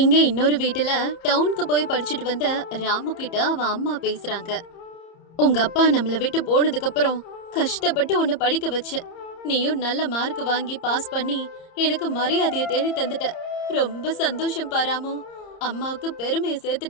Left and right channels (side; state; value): right; late; 30 ms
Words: இன்னொரு வீட்டுல டவுனுக்கு போய் படிச்சுட்டு வந்த ராமு கிட்ட அவன் அம்மா பேசுறாங்க. உங்க அப்பா நம்மள விட்டு போனதுக்கு அப்புறம் கஷ்டப்பட்டு உன்னை படிக்க வச்ச. நீயும் நல்ல மார்க் வாங்கி பாஸ் பண்ணி எனக்கு மரியாதையை தேடி தந்துட்ட. ரொம்ப சந்தோஷம் பாராமு. அம்மாவுக்கு பெருமையை